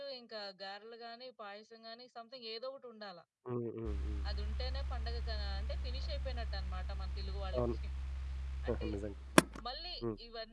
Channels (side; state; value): both; identical; correlation 1.00